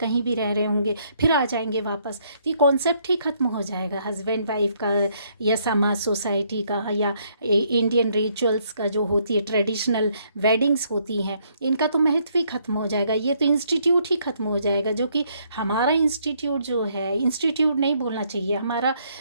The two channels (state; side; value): inverted; both; correlation -0.70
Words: भी रह रहे होंगे, फिर आ जाएंगे वापस, तो ये कॉन्सेप्ट ही ख़त्म हो जाएगा हस्बैंड वाइफ का, या समाज सोसाइटी का, या इंडियन रिचुअल्स का जो होती है ट्रेडिशनल वेडिंग्स होती हैं, इनका तो महत्व ही खत्म हो जाएगा। ये तो इंस्टीट्यूट ही खत्म हो जाएगा, जो कि हमारा इंस्टीट्यूट जो है, इंस्टीट्यूट नहीं बोलना चाहिए, हमारा